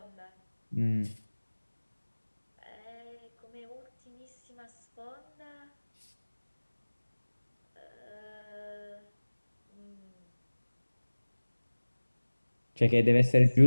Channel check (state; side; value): inverted; both; correlation -1.00